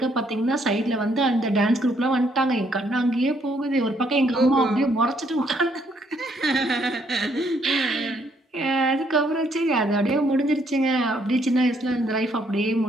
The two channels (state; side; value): normal; both; correlation 0.69